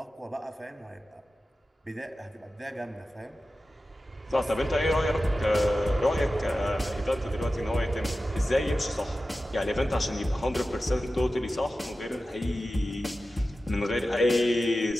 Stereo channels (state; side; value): normal; both; correlation 0.94